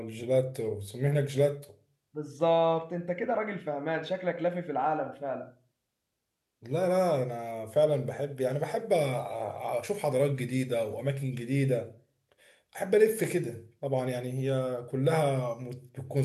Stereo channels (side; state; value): both; identical; correlation 1.00